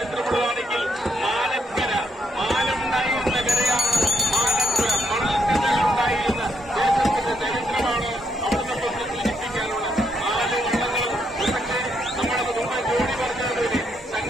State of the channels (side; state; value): both; normal; correlation 0.75